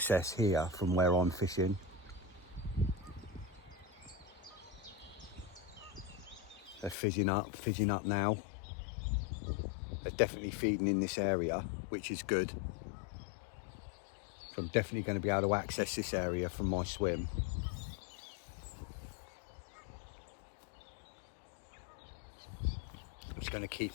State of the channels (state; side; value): drops out; right; at 7.0 s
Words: here from where I'm fishing. They're fizzing up now. They're definitely feeding in this area, which is good. So I'm definitely going to be able to access this area from my swim. I'm just going to